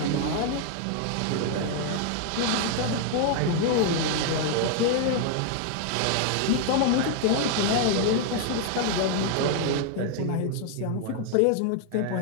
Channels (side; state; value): both; different; correlation 0.00